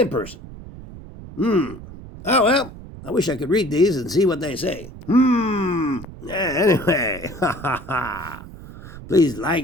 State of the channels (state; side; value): noise; right; rumble, 15 dB below the sound